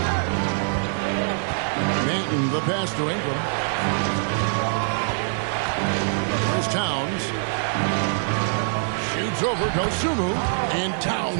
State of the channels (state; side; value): silent; left; 63 dB below the other